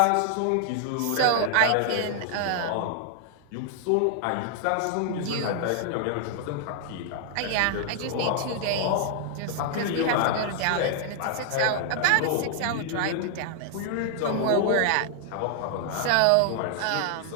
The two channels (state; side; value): different; both; correlation 0.00